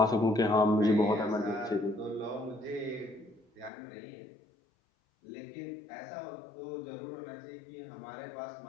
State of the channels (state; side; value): drops out; right; at 3.7 s